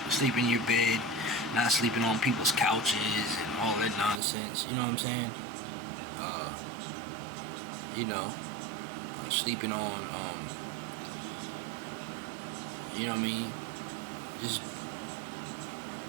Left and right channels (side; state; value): left; drops out; at 4.2 s